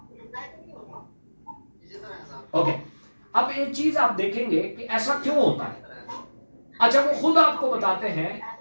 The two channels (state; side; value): inverted; both; correlation -1.00